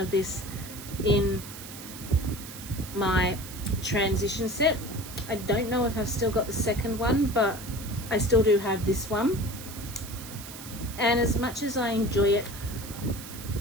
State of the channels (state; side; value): noise; right; hiss, 13 dB below the sound